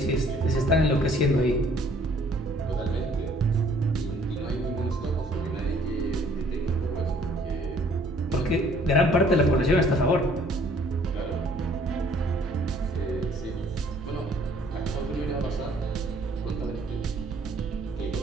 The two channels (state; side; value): normal; both; correlation 0.59